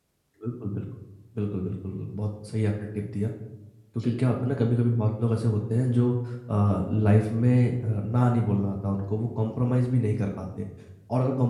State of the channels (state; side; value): identical; both; correlation 1.00